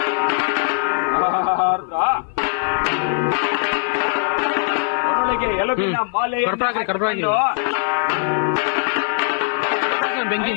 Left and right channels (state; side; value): silent; right; 57 dB below the other